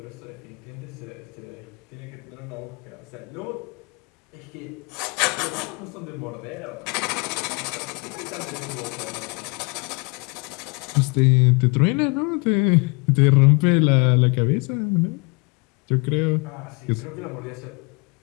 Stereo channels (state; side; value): quieter; right; 30.7 dB